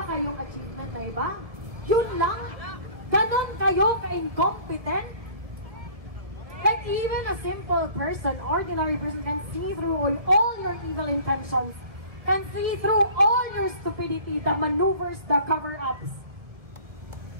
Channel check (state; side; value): late; left; 1.7 ms